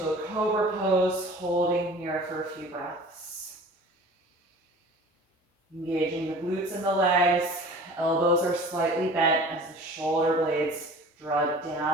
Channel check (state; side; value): normal; both; correlation 0.43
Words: a cobra pose, holding here for a few breaths. Engaging the glutes and the legs. Elbows are slightly bent as the shoulder blades draw